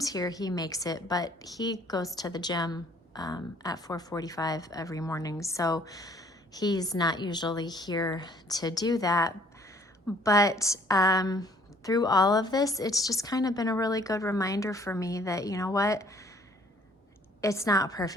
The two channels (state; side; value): normal; both; correlation 0.59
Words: here he makes it, but he goes to the gym at 4:45 every morning, so he's not usually here to do that. But through all of this, it's just kind of been a really good reminder for me that, you know what, it's not